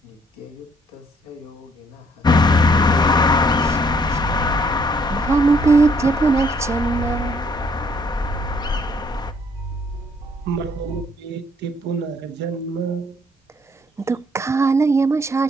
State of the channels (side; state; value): both; normal; correlation 0.66